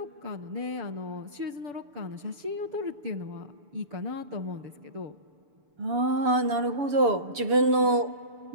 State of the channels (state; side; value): late; left; 6.9 ms